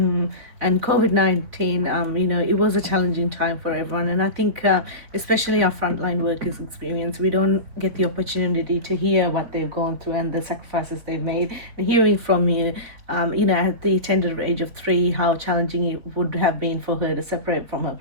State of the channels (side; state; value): left; late; 4.0 ms